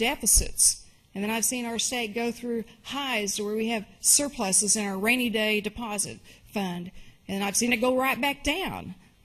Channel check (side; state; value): both; identical; correlation 1.00